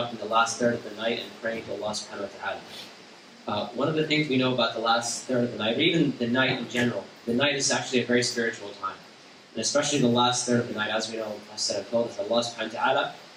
in the last third of the night and praying to Allah subhanahu wa ta'ala. One of the things we know about the last third of the night, or even the night in general, the night is actually a very spiritual time. And especially the last third of the night, as we know, Prophet told us, Allah subhanahu wa ta'ala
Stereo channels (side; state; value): both; identical; correlation 1.00